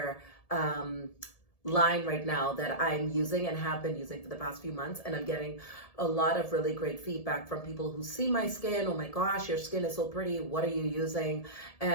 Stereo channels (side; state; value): right; late; 1.7 ms